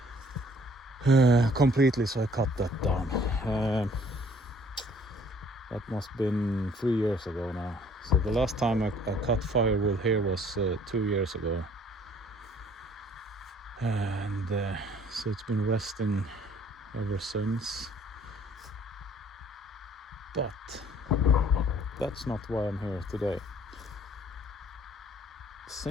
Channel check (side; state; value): both; normal; correlation 0.58